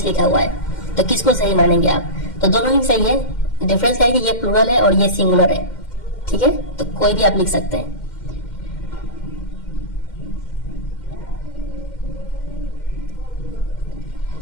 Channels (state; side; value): late; right; 2.1 ms